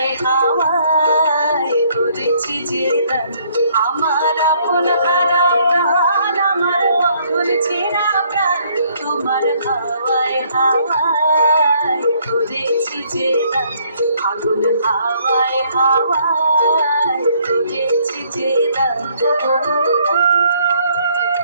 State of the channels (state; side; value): inverted; both; correlation -0.66